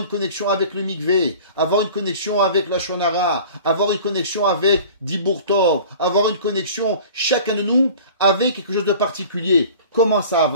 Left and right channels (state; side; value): inverted; both; correlation -0.43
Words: connexion avec le mikvé, avoir une connexion avec la shonara, avoir une connexion avec Dibur Tov, avoir une connexion, chacun de nous, avec quelque chose de particulier. Comment ça